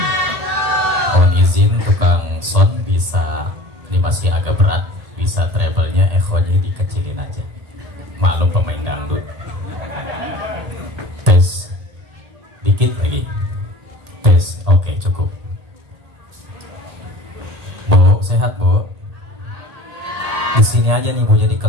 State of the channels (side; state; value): left; late; 1.8 ms